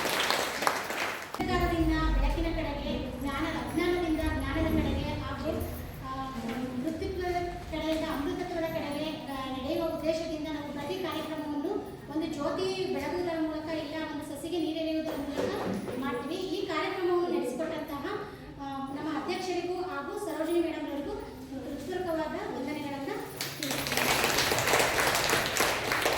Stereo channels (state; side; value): identical; both; correlation 1.00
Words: ಬೆಳಕಿನ ಕಡೆಗೆ ಅಜ್ಞಾನದಿಂದ ಜ್ಞಾನದ ಕಡೆಗೆ ಹಾಗೂ ಮೃತ್ಯುತ್ವದ ಕಡೆಯಿಂದ ಅಮೃತತ್ವದ ಕಡೆಗೆ ನಡೆಯುವ ಉದ್ದೇಶದಿಂದ ನಾವು ಪ್ರತಿ ಕಾರ್ಯಕ್ರಮವನ್ನು ಒಂದು ಜ್ಯೋತಿ ಬೆಳಗುವುದರ ಮೂಲಕ ಇಲ್ಲ ಒಂದು ಸಸಿಗೆ ನೀರೆರೆಯುವುದರ ಮೂಲಕ ಮಾಡ್ತೀವಿ. ಈ ಕಾರ್ಯಕ್ರಮವನ್ನು ನಡೆಸಿಕೊಟ್ಟಂತಹ ನಮ್ಮ ಅಧ್ಯಕ್ಷರಿಗೂ ಹಾಗೂ ಸರೋಜಿನಿ ಮೇಡಮ್ ಅವರಿಗೂ ಹೃತ್ಪೂರ್ವಕವಾದ ವಂದನೆಗಳನ್ನು